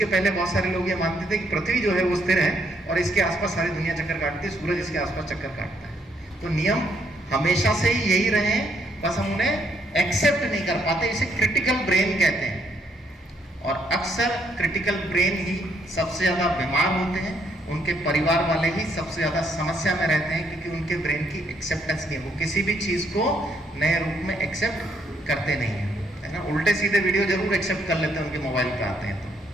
पहले बहुत सारे लोग ये मानते थे कि पृथ्वी जो है वो स्थिर है और इसके आसपास सारी दुनिया चक्कर काटती है, सूरज इसके आसपास चक्कर काटता है। तो नियम हमेशा से ही यही रहे हैं, बस हम उन्हें एक्सेप्ट नहीं कर पाते। इसे क्रिटिकल ब्रेन कहते हैं, और अक्सर क्रिटिकल ब्रेन ही सबसे ज्यादा बीमार होते हैं, उनके परिवार वाले ही सबसे ज्यादा समस्या में रहते हैं, क्योंकि उनके ब्रेन की एक्सेप्टेंस नहीं है, वो किसी भी चीज को नए रूप में एक्सेप्ट करते नहीं है ना। उल्टे सीधे वीडियो जरूर एक्सेप्ट कर लेते हैं, उनके मोबाइल पे आते हैं।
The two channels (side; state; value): both; normal; correlation 0.72